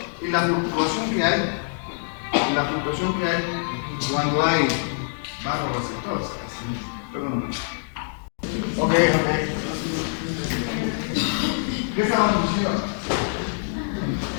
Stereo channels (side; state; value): right; silent; digital silence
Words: y la fluctuación que hay cuando hay barorreceptores. Perdón. Ok. ¿Qué estábamos diciendo?